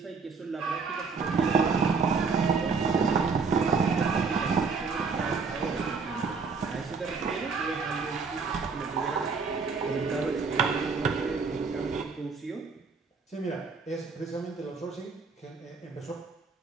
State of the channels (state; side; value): quieter; left; 4.9 dB